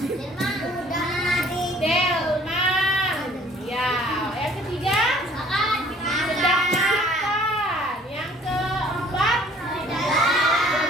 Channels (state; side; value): normal; both; correlation 0.55